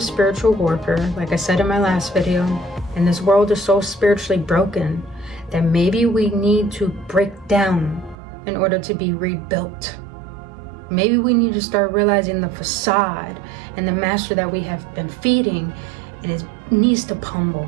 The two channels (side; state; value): left; drops out; at 8.2 s